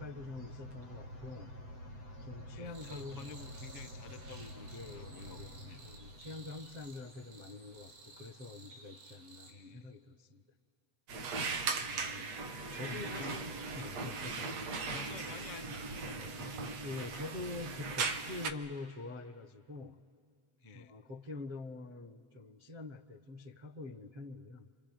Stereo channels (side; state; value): left; late; 8.0 ms